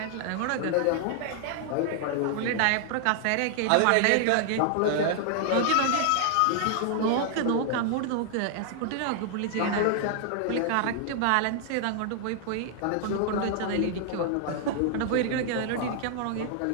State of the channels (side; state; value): both; different; correlation 0.00